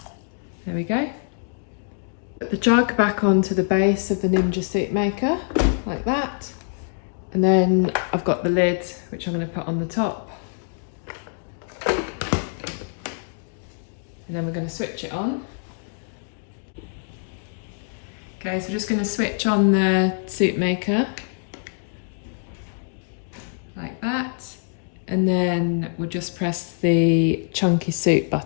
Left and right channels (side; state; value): right; silent; digital silence